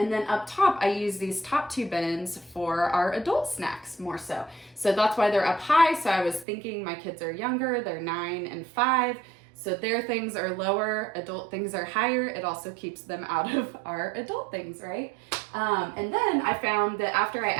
then up top, I use these top two bins for our adult snacks more so. So that's why they're up high. So I was thinking my kids are younger, they're 9 and 5. So their things are lower, adult things are higher. It also keeps them out of our adult things, right? And then I found that after I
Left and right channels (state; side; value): drops out; left; at 6.5 s